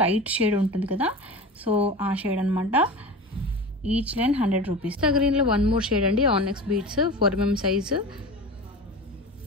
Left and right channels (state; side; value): normal; both; correlation 0.31